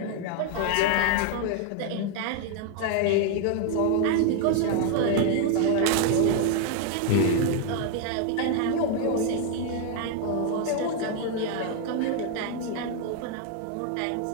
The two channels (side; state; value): both; different; correlation 0.00